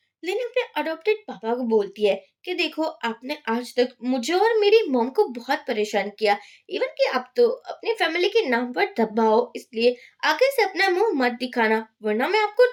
लिन अपने अडॉप्टेड पापा को बोलती है कि देखो आपने आज तक मुझे और मेरी मॉम को बहुत परेशान किया, इवन कि आप तो अपनी फैमिली के नाम पर दबाओ, इसलिए आगे से अपना मुंह मत दिखाना, वरना मैं आपको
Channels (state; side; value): identical; both; correlation 1.00